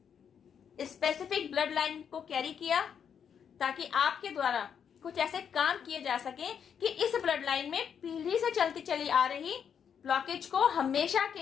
स्पेसिफिक ब्लड लाइन को कैरी किया ताकि आपके द्वारा कुछ ऐसे काम किए जा सके कि इस ब्लड लाइन में पीढ़ी से चलती चली आ रही ब्लॉकेज को हमेशा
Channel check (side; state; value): right; quieter; 7.7 dB